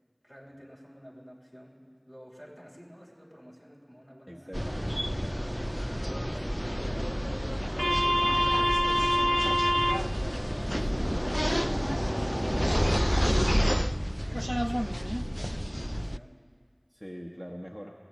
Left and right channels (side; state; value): both; identical; correlation 1.00